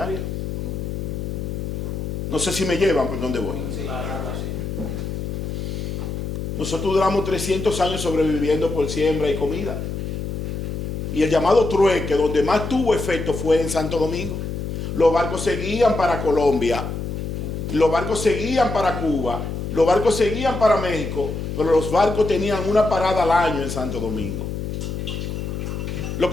No sé si me llevan por dónde voy. Nosotros duramos 300 años sobreviviendo por siembra y comida. Y el llamado trueque, donde más tuvo efecto, fue en Santo Domingo. Los barcos seguían para Colombia, los barcos seguían para Cuba, los barcos seguían para México, pero los barcos tenían una parada al año en Santo Domingo. Lo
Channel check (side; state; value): left; noise; hum, 4 dB below the sound